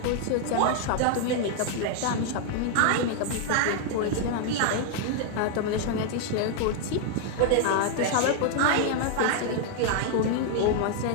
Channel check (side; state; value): both; different; correlation 0.00